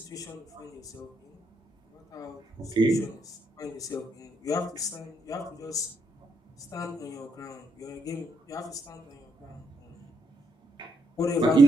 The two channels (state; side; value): normal; both; correlation 0.76